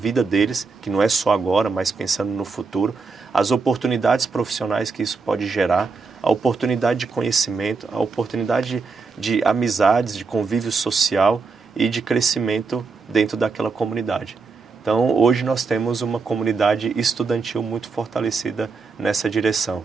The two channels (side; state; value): left; quieter; 4.5 dB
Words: deles, que não é só agora, mas pensando no futuro, as oportunidades profissionais que isso pode gerar, a oportunidade de conhecimento, a oportunidade de amizades, de convívio social e de crescimento dentro daquela comunidade. Então, hoje nós temos uma comunidade estudantil muito fortalecida nessa direção.